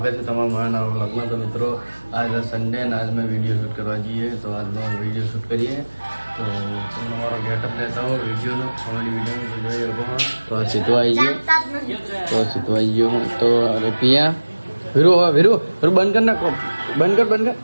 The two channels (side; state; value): both; inverted; correlation -1.00